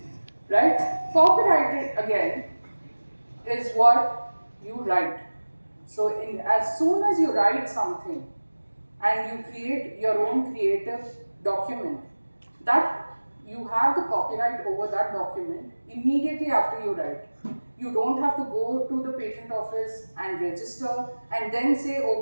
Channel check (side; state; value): both; inverted; correlation -1.00